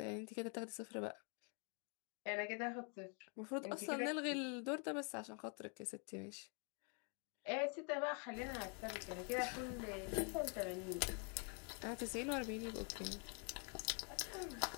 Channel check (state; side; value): quieter; right; 39.2 dB